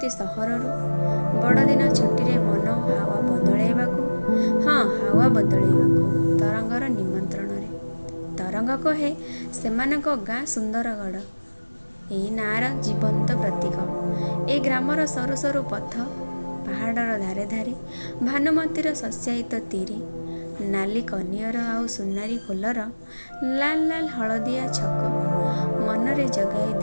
ସହରରୁ ବଡ଼ଦିନ ଛୁଟିରେ ମନ ହାୱା ବଦଳାଇବାକୁ। ହଁ, ହାୱା ବଦଳାଇବାକୁ ତରଙ୍ଗର ନିମନ୍ତ୍ରଣରେ। ତରଙ୍ଗ କହେ ସେମାନଙ୍କ ଗାଁ ସୁନ୍ଦରଗଡ଼ ଏଇ ନାଁର ଜୀବନ୍ତ ପ୍ରତୀକ। ଏ ଗ୍ରାମର ସରୁ ସରୁ ପଥ, ପାହାଡ଼ର ଧାରେ ଧାରେ ଭାନୁମତୀର ଶସ୍ୟାୟିତ ତିରି, ନାଲି କନିଅର ଆଉ ସୁନାରୀ ଫୁଲର ଲାଲ ଲାଲ ହଳଦିଆ ଛକ ମନରେ ଜଗାଇ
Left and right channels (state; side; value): inverted; both; correlation -1.00